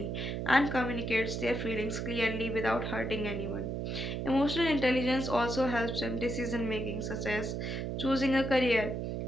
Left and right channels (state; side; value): noise; right; hum, 3 dB below the sound